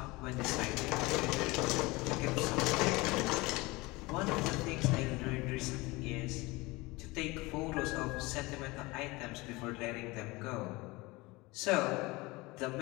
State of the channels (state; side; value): quieter; right; 22.7 dB